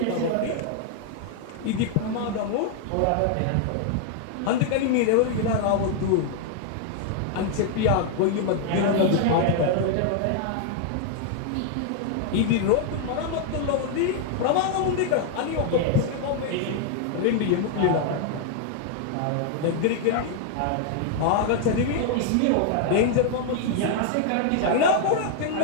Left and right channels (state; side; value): different; both; correlation 0.00